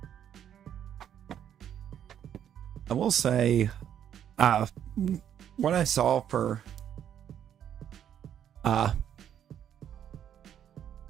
I will say, what I saw for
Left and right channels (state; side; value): quieter; left; 9.7 dB